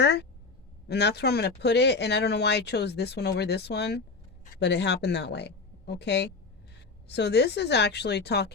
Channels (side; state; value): right; quieter; 4.1 dB